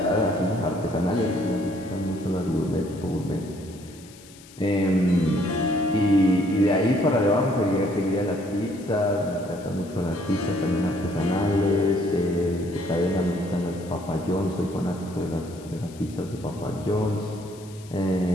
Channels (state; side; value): noise; left; hiss, 22 dB below the sound